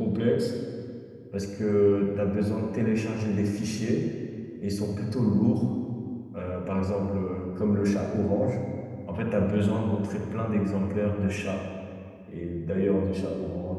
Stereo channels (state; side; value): identical; both; correlation 1.00